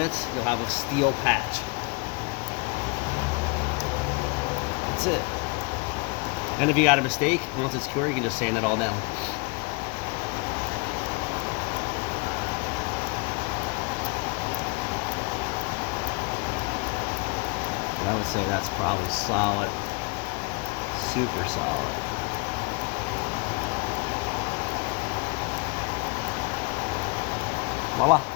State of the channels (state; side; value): quieter; right; 29.5 dB